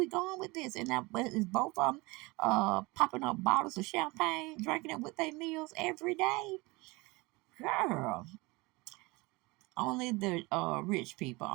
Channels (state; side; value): quieter; left; 24.1 dB